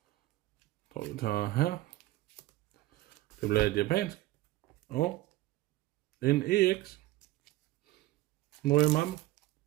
jeg tror, vi tager her. Det bliver et japansk. Og en EX. Nu er mappen.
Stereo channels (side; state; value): left; quieter; 17.4 dB